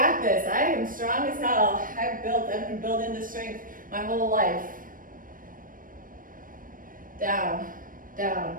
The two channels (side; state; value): left; late; 0.40 ms